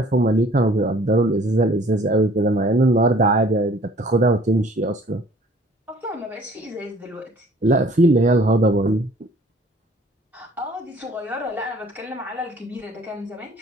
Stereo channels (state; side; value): normal; both; correlation 0.54